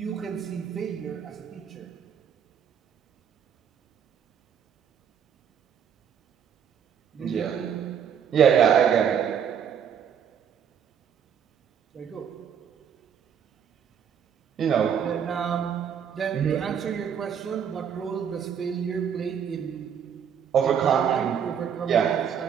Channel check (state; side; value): quieter; left; 8.0 dB